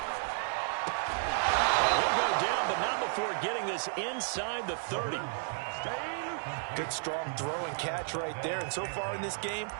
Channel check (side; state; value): left; silent; digital silence